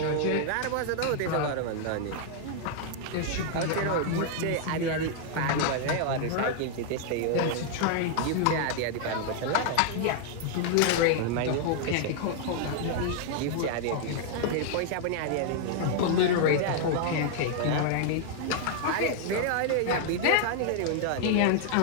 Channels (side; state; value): both; different; correlation 0.00